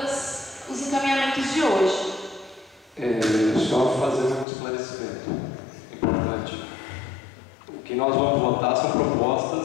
os encaminhamentos de hoje. Só fazer um esclarecimento importante. O que nós vamos votar são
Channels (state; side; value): drops out; right; at 4.5 s